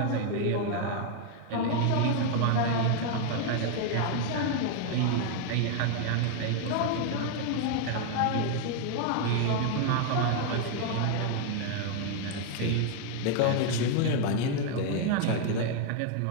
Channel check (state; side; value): different; both; correlation 0.00